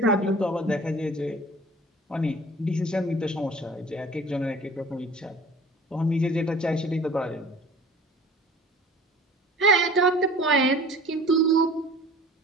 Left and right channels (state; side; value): normal; both; correlation 0.45